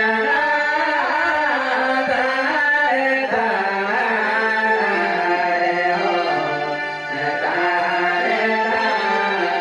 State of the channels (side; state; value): both; identical; correlation 1.00